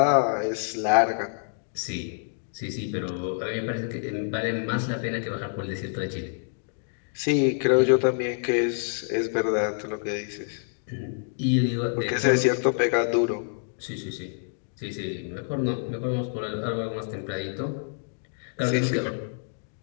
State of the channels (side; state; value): right; silent; digital silence